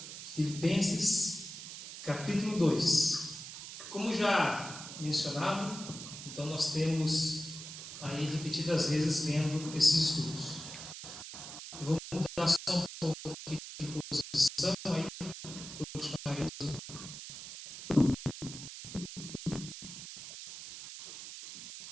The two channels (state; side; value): noise; right; hiss, 11 dB below the sound